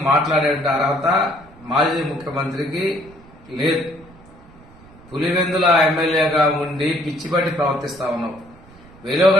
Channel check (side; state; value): right; noise; rumble, 23 dB below the sound